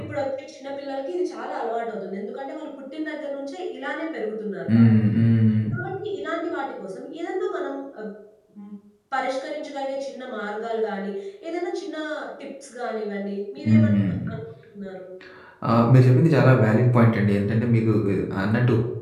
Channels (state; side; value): identical; both; correlation 1.00